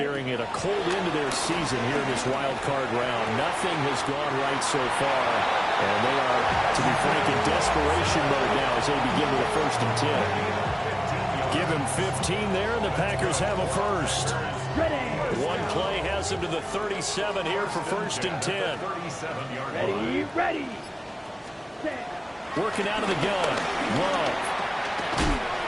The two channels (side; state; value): both; identical; correlation 1.00